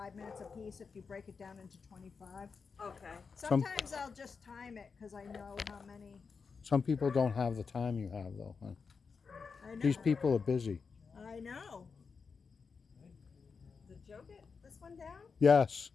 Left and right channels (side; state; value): right; quieter; 5.3 dB